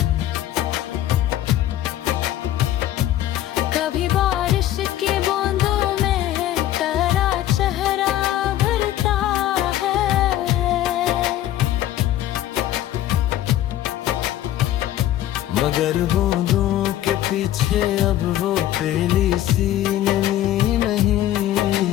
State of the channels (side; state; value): right; quieter; 13.0 dB